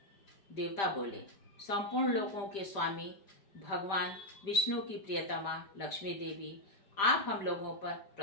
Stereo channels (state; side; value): late; right; 5.1 ms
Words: देवता बोले, संपूर्ण लोकों के स्वामी भगवान विष्णु की प्रियतमा लक्ष्मी देवी, आप हम लोगों पर